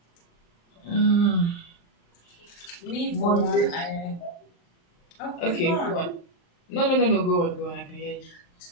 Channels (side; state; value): right; late; 35 ms